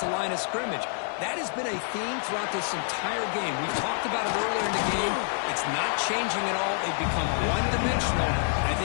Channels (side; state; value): right; silent; 60 dB below the other